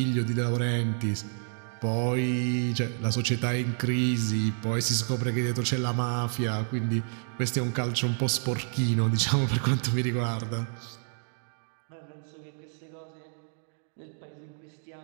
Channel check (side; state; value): left; silent; 58 dB below the other